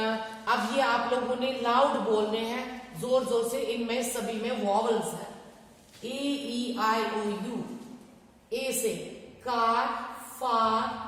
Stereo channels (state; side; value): identical; both; correlation 1.00